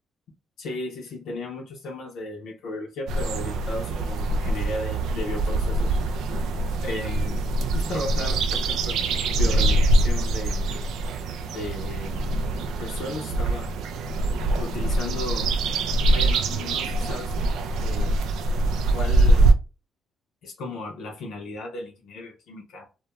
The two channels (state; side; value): normal; both; correlation 0.71